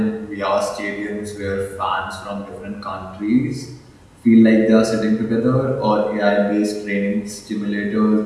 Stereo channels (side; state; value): both; identical; correlation 1.00